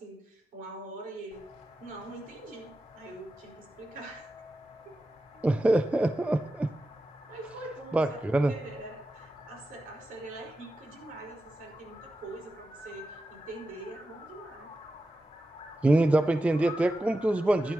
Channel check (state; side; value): normal; both; correlation 0.91